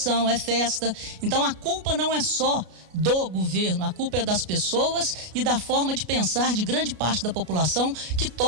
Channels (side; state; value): left; late; 33 ms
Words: é festa. Então a culpa não é só do governo, a culpa é das pessoas e da forma de pensar de grande parte da população que